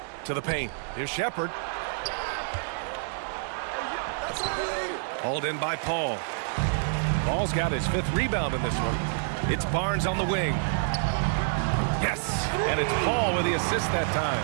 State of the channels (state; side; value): silent; left; digital silence